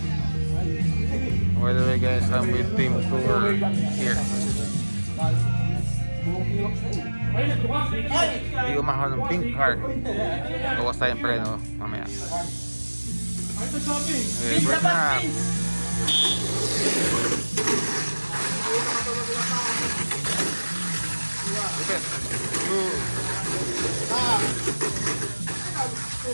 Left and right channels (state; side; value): inverted; both; correlation -1.00